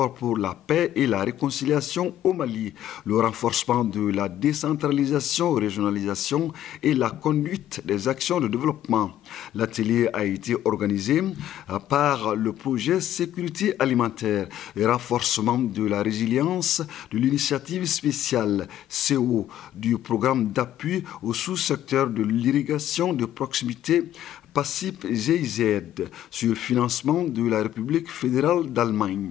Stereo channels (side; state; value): right; quieter; 12.0 dB